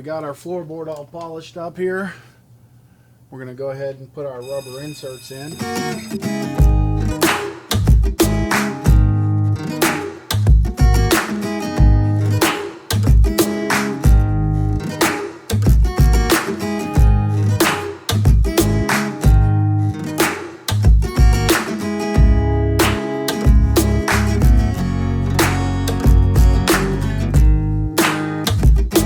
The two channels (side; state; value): both; identical; correlation 1.00